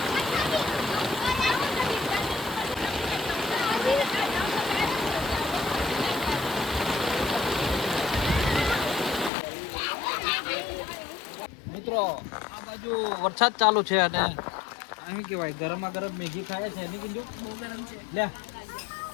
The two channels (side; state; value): right; drops out; at 9.3 s